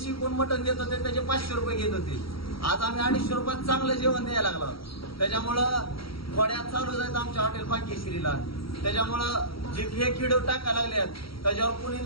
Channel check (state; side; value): late; right; 0.75 ms